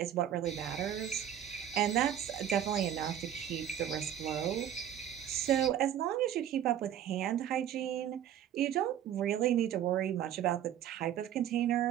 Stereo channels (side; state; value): left; quieter; 10.5 dB